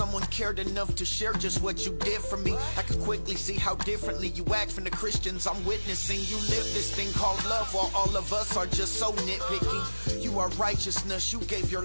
cared enough to share just what you did for me. I could quickly see how differently you act from the Christians I'm witnessing. You live this thing called love while all of us are just so nitpicky. You are righteousness, you gave your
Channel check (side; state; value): both; inverted; correlation -1.00